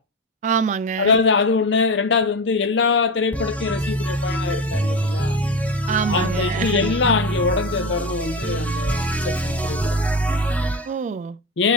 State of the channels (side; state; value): both; normal; correlation 0.20